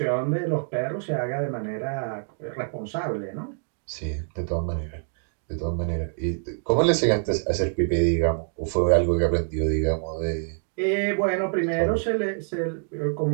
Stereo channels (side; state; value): left; silent; 61 dB below the other